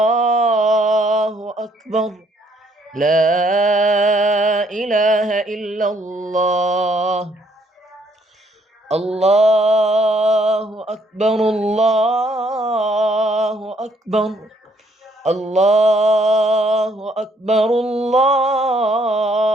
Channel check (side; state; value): both; normal; correlation 0.67